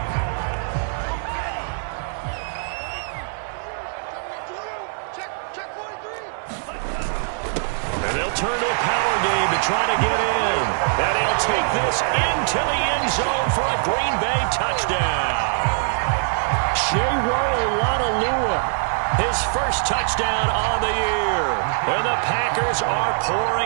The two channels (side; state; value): left; silent; digital silence